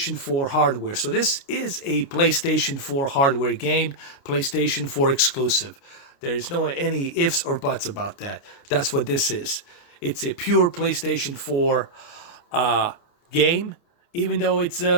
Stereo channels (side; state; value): right; late; 29 ms